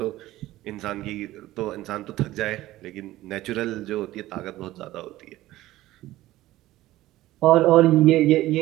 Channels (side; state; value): left; quieter; 16.1 dB